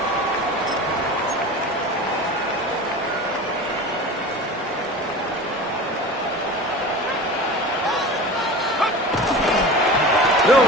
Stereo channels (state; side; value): normal; both; correlation 0.33